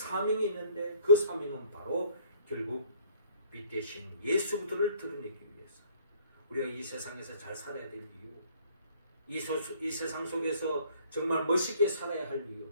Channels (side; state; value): both; inverted; correlation -0.59